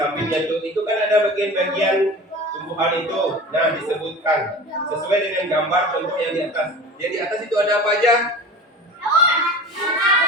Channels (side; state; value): both; normal; correlation 0.36